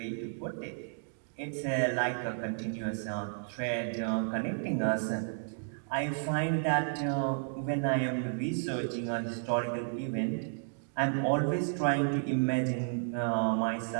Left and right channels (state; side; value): silent; left; digital silence